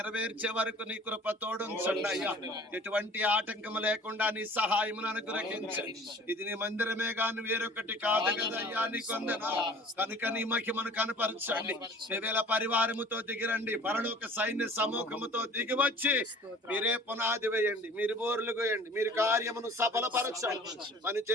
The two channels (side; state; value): both; normal; correlation 0.47